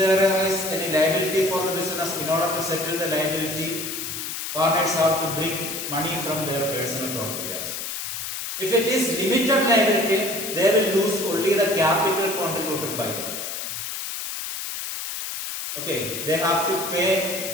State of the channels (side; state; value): left; noise; hiss, 5 dB below the sound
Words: is any liability for the business, in order to settle the liability, partners have to bring money from their personal property also. If it is limited liability, they will lose only the capital contributed by them. Okay, they have to